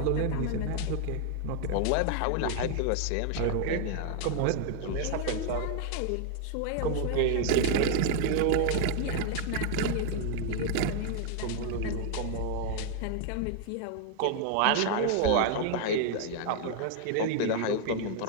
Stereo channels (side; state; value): both; different; correlation 0.00